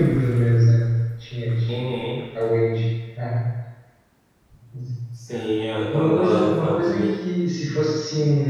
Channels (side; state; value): both; identical; correlation 1.00